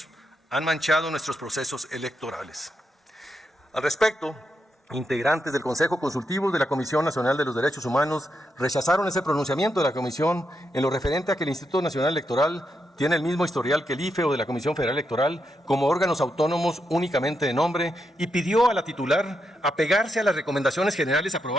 han manchado nuestros procesos electorales. Al respecto, integrantes del Consejo Consultivo de la Comisión Nacional de los Derechos Humanos rechazaron ese pronunciamiento de la Comisión en lo referente a que el Instituto Nacional Electoral tiene el mismo historial que el IFE o de la Comisión Federal Electoral como órganos autónomos únicamente de nombre, y pidió a la titular apegarse a las recomendaciones generales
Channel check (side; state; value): both; normal; correlation 0.83